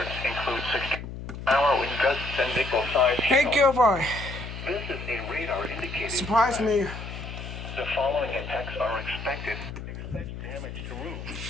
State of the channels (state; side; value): noise; left; hum, 9 dB below the sound